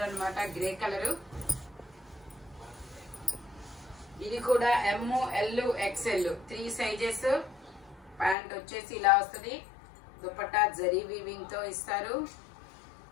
అన్నమాట, గ్రే కలర్. ఇది కూడా ML XL 3 సైజెస్. ప్యాంట్ వచ్చేసి ఇలా వస్తుంది. దుపట్టా జరీ వీవింగ్ తో ఇస్తారు.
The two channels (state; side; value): drops out; right; at 8.3 s